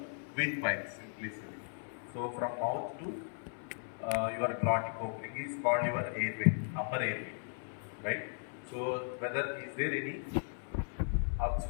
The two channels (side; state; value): right; silent; 53 dB below the other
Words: windpipe, simply said. So from mouth to your glottic opening is called your airway, upper airway, right? So whether is there any